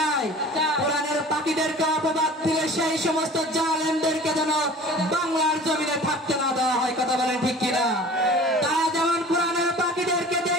কোরআনের পাখিদেরকে অপবাদ দিলে সেই সমস্ত জালেমদেরকে যেন বাংলার জমিনে থাকতে না দেওয়া হয়। কথা বলেন ঠিক কিনা? তারা যেমন কোরআনের পাখিদেরকে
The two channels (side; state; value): both; normal; correlation 0.43